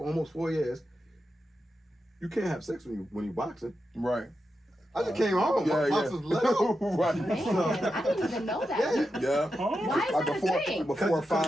almost 4 years, you can't have sex when you boxing? Right. I just came home. My box was let out. Right. Man, I didn't even know that. Yeah. Why is that a thing? Before a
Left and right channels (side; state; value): both; normal; correlation 0.88